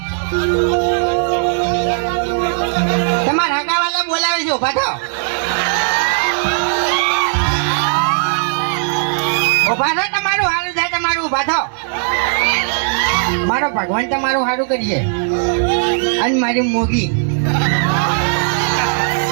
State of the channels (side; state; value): left; silent; digital silence